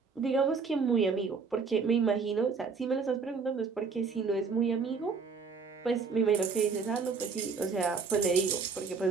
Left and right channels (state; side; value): quieter; left; 5.1 dB